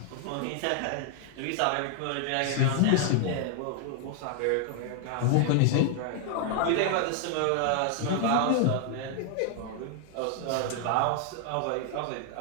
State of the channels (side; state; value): both; different; correlation 0.00